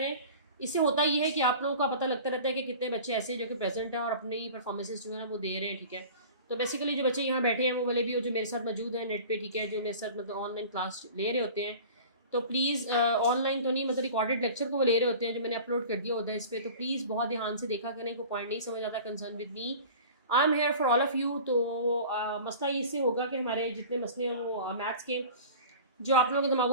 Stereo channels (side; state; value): both; inverted; correlation -0.40